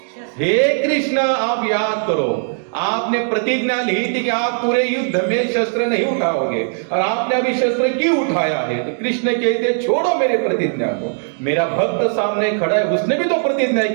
हे कृष्ण आप याद करो, आपने प्रतिज्ञा ली थी कि आप पूरे युद्ध में शस्त्र नहीं उठाओगे और आपने अभी शस्त्र क्यों उठाया है। तो कृष्ण कहते छोड़ो मेरे प्रतिज्ञा को, मेरा भक्त सामने खड़ा है, उसने भी तो प्रतिज्ञा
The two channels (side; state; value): left; silent; 65 dB below the other